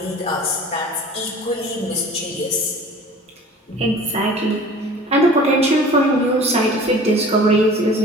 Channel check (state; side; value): normal; both; correlation 0.44